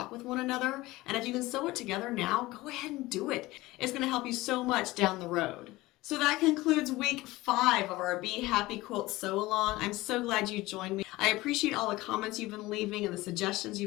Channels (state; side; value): quieter; right; 19.3 dB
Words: with one another. And if you can sew it together now, go ahead and do it. It's going to help you so much down the road. So that concludes week 5 of our Bee Happy Quilt Sew Along. I'm so glad you joined me. I appreciate all the comments you've been leaving and the suggestions